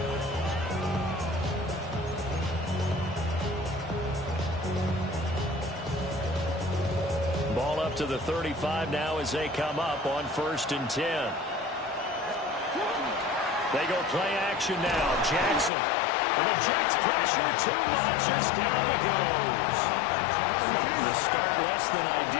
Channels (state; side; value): drops out; right; at 15.7 s